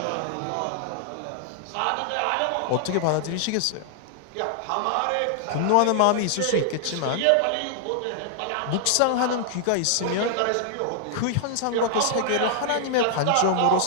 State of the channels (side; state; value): both; different; correlation 0.00